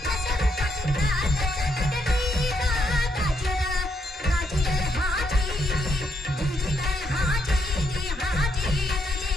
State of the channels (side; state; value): both; normal; correlation 0.76